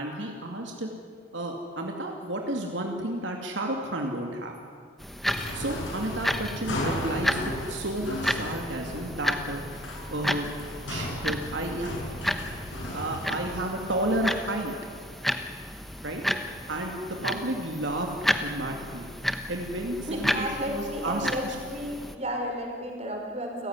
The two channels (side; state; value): both; normal; correlation 0.50